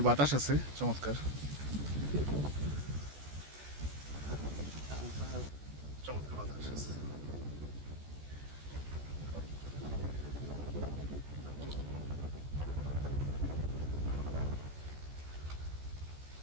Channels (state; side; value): late; left; 14 ms